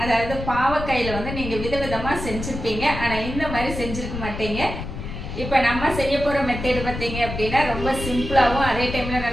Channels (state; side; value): noise; left; rumble, 7 dB below the sound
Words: அதாவது பாவக்காயில் வந்து நீங்கள் விதவிதமாக செஞ்சுருப்பீங்க, ஆனால் இந்த மாதிரி செஞ்சுருக்க மாட்டீங்க. இப்போ நம்ம செய்ய போகிற மெத்தேடு பார்த்தீங்க அப்படின்னா ரொம்ப சிம்பிளாகவும் அதே டைமில்